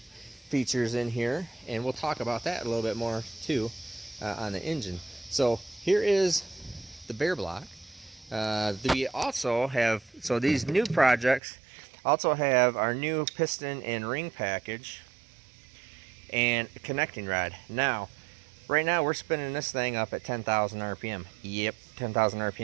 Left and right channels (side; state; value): left; drops out; at 11.4 s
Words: features in here, and we'll talk about that a little bit more too on the engine. So here is the bare block. We also have, so these new projects also have our new piston and ring package and connecting rod. Now right now we're spinning this thing up at 10,000 RPM. Yep, 10,000